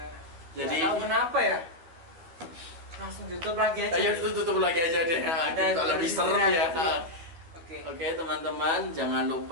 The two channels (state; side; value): late; left; 12 ms